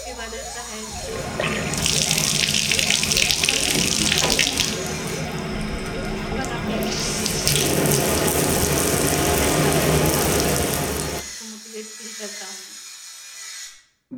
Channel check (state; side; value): identical; both; correlation 1.00